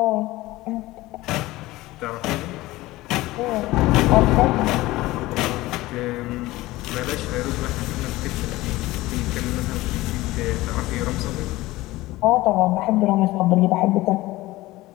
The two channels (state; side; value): quieter; right; 18.5 dB